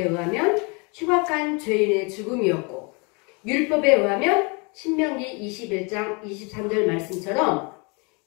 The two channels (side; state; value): right; quieter; 31.3 dB